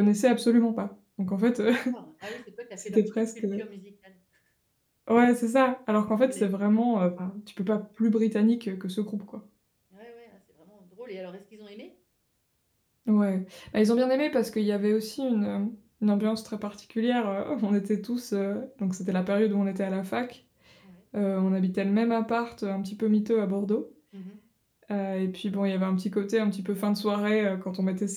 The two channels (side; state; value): both; identical; correlation 1.00